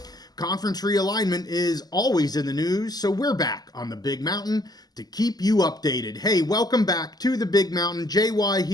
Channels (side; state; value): right; late; 0.19 ms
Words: Conference realignment is always in the news, so we're back on the Big Mountain to keep you updated. Hey, welcome back to the Big Mountain. JY